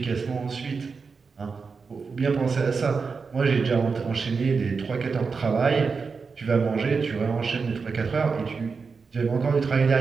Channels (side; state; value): left; quieter; 5.0 dB